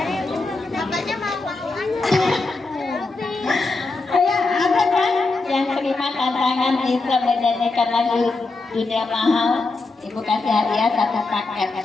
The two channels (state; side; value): quieter; right; 3.6 dB